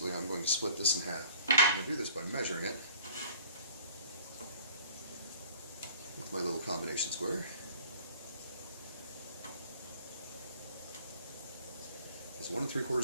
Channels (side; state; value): both; inverted; correlation -0.52